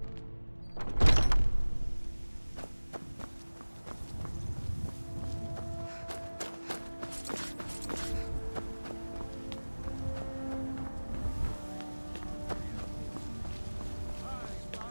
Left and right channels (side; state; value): both; inverted; correlation -1.00